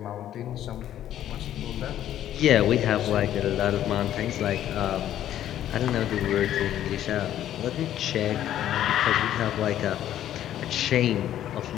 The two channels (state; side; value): quieter; right; 11.7 dB